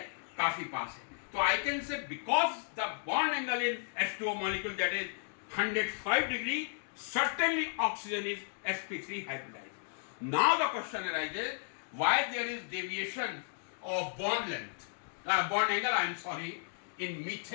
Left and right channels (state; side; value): silent; right; digital silence